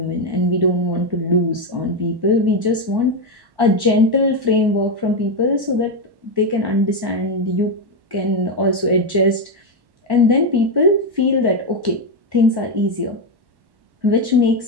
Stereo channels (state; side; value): late; left; 1.1 ms